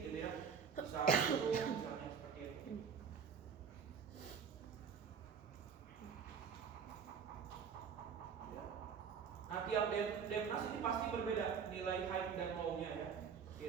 gitu ya. Bisa gunung misalnya seperti itu. Ya. Nah, tiap Demnas ini pasti berbeda nilai height dan low-nya ya.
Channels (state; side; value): quieter; left; 6.7 dB